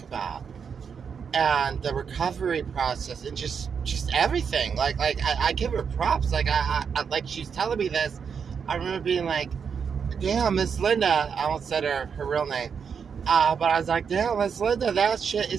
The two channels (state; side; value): quieter; left; 6.6 dB